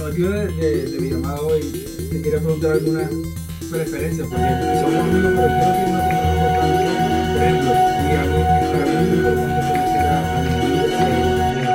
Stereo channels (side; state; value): both; identical; correlation 1.00